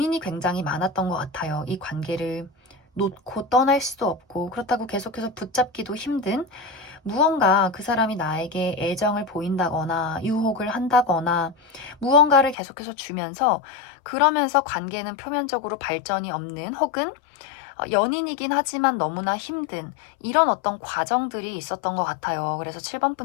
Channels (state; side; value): drops out; right; at 12.6 s